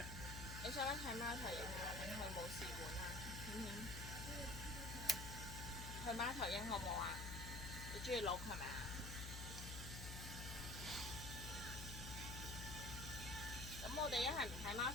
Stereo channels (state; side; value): noise; left; hum, 6 dB below the sound